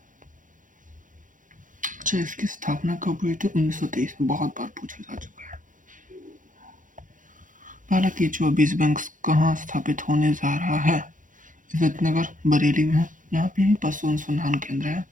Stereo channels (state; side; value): late; left; 0.38 ms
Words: अच्छा, इसकी स्थापना कब हुई थी। 1923 में। बहुत बार पूछा जा चुका है। पहला केचुआ बीज बैंक कहाँ स्थापित होने जा रहा है। इज्जतनगर बरेली में है। यहाँ पे ही पशु अनुसंधान केंद्र है।